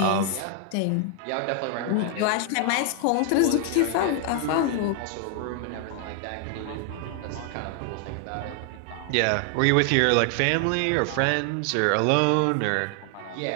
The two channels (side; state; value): both; different; correlation 0.00